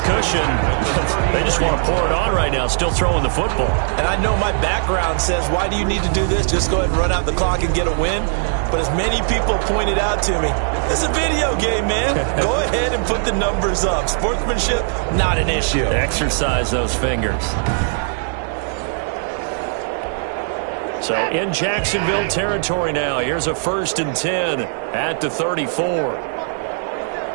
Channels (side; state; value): left; silent; 56 dB below the other